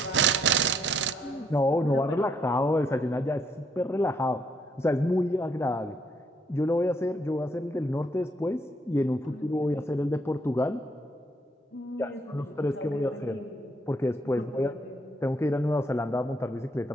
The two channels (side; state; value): both; normal; correlation 0.71